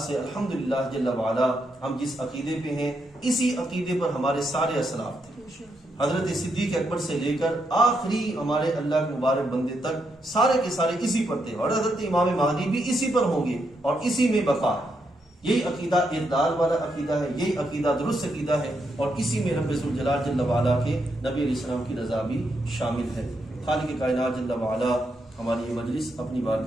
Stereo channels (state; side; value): normal; both; correlation 0.80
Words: سے الحمدللہ جل وعلا ہم جس عقیدے پہ ہیں اسی عقیدے پر ہمارے سارے اسلاف تھے. حضرت صدیق اکبر سے لے کر آخری ہمارے اللہ کے مبارک بندے تک سارے کے سارے اسی پر تھے، اور حضرت امام مہدی بھی اسی پر ہوں گے اور اسی میں بقا ہے. یہی عقیدہ اعتدال والا عقیدہ ہے، یہی عقیدہ درست عقیدہ ہے، اور اسی میں رب ذوالجلال جل وعلا کے نبی علیہ السلام کی رضا بھی شامل ہے. خالق کائنات جل وعلا ہماری یہ مجلس اپنی